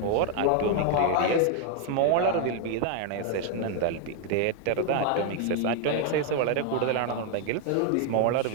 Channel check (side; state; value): both; different; correlation 0.00